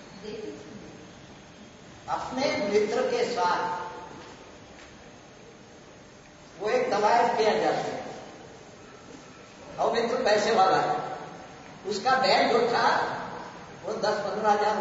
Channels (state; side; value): identical; both; correlation 1.00